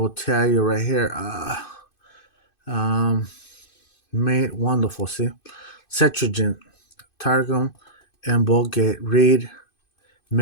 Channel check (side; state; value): right; late; 2.5 ms